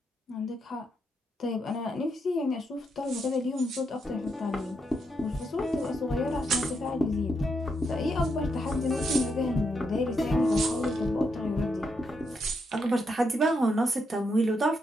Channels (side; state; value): both; normal; correlation 0.80